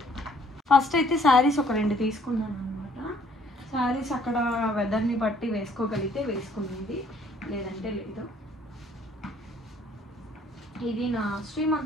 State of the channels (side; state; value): both; normal; correlation 0.61